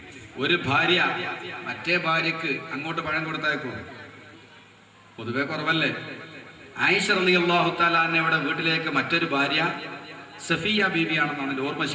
ഒരു ഭാര്യ മറ്റേ ഭാര്യക്ക് അങ്ങോട്ട് പഴം കൊടുത്തയക്കും, പൊതുവെ കുറവല്ലേ. ആയിഷ റളിയല്ലാഹു തആല അൻഹയുടെ വീട്ടിലേക്ക് മറ്റൊരു ഭാര്യ സഫിയ ബീവിയാണെന്നാണ് ഓർമ്മ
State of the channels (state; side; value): identical; both; correlation 1.00